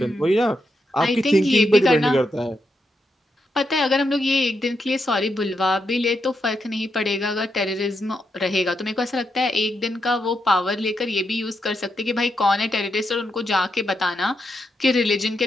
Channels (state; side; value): normal; both; correlation 0.83